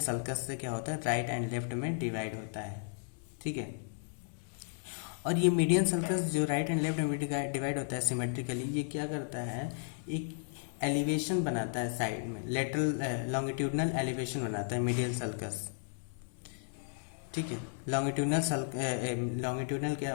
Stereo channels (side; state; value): right; silent; 55 dB below the other